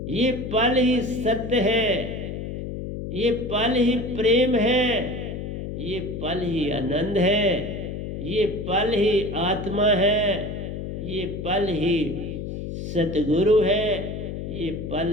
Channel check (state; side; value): noise; left; hum, 6 dB below the sound